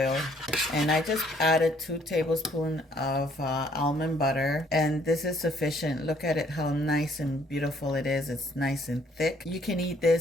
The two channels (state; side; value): normal; both; correlation 0.64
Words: And I just added 2 tablespoons of almond butter, and this is sufficient. Look at it, how nice and beautiful it is. It's nice and thick. You can eat